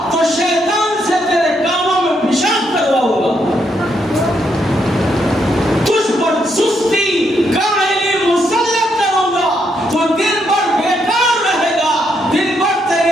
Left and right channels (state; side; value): normal; both; correlation 0.77